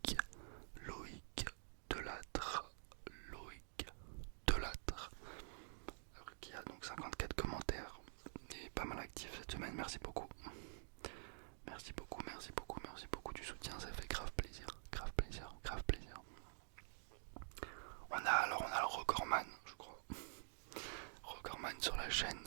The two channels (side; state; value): left; silent; digital silence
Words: Delattre. Loïc Delattre. Qui a donc 54 commentaires. Et pas mal actif cette semaine. Merci beaucoup. Merci beaucoup du soutien. Ça fait grave plaisir. On a le recordman, je crois. Recordman sur la